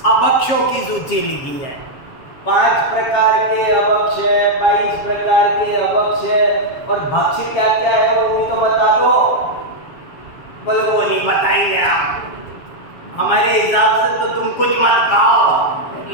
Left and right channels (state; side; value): late; right; 7.3 ms